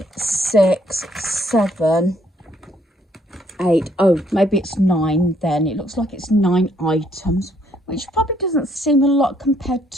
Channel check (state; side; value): normal; both; correlation 0.68